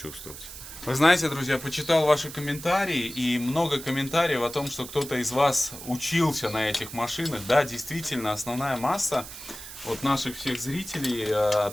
Вы знаете, друзья, почитал ваши комментарии, и много комментариев о том, что кто-то из вас учился на этих машинах. Да, действительно, основная масса вот наших всех зрителей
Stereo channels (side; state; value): right; noise; hiss, 13 dB below the sound